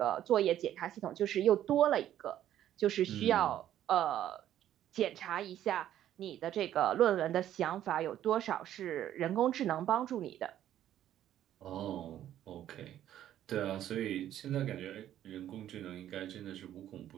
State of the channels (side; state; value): left; quieter; 11.7 dB